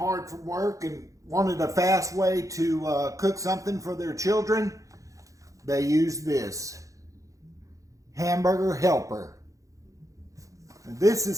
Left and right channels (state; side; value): late; left; 0.16 ms